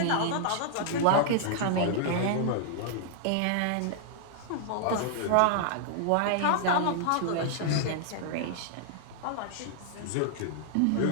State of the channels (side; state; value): both; different; correlation -0.01